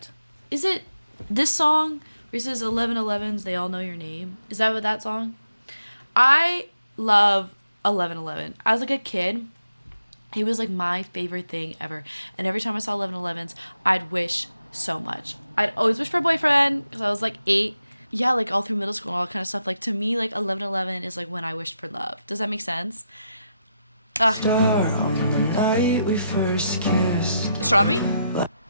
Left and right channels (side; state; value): both; inverted; correlation -0.83